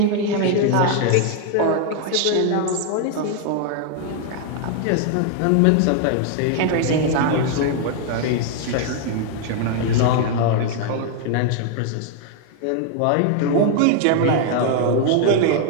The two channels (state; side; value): different; both; correlation 0.00